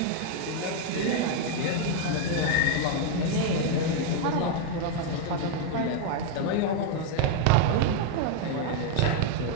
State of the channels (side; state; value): both; different; correlation 0.00